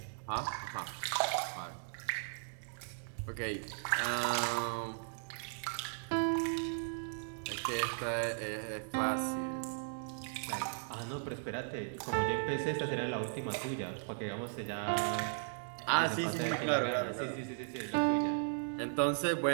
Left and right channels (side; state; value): left; silent; digital silence